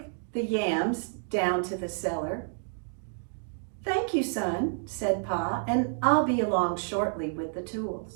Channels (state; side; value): silent; left; 58 dB below the other